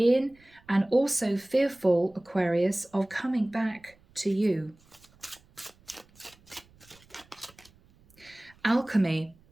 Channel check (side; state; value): right; noise; rumble, 29 dB below the sound